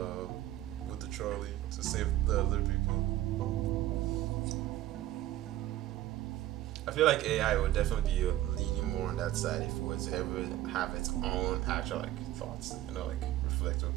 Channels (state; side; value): quieter; left; 14.4 dB